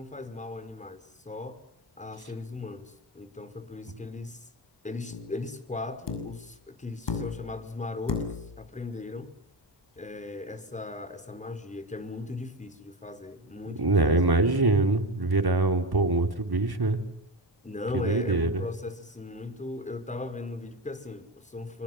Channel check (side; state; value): both; normal; correlation 0.18